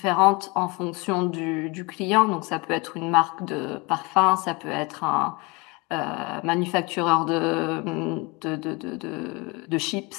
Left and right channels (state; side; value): quieter; right; 27.0 dB